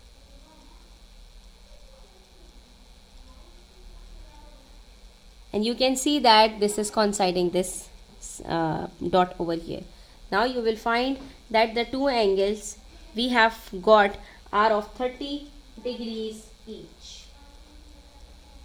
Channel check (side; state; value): both; identical; correlation 1.00